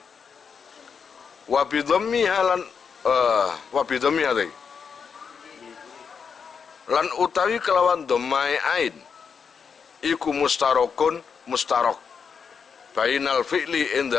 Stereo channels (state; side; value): quieter; right; 6.3 dB